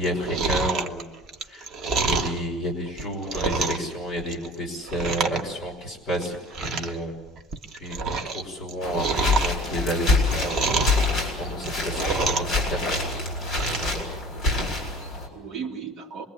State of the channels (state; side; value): normal; both; correlation 0.44